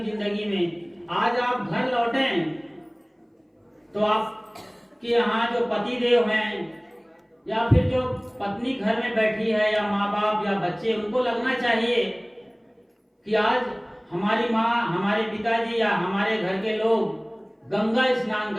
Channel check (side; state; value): both; identical; correlation 1.00